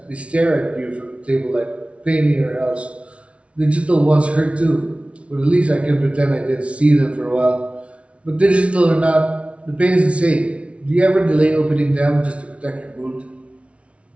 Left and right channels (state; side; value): late; left; 0.062 ms